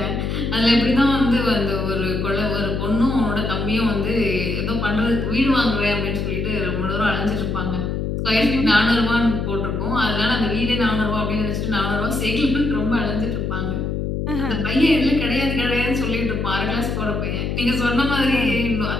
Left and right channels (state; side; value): noise; left; hum, 1 dB below the sound